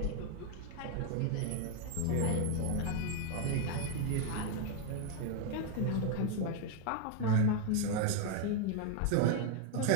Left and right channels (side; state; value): both; different; correlation 0.00